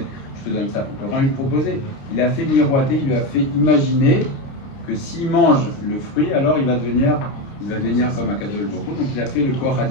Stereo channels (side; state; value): right; late; 29 ms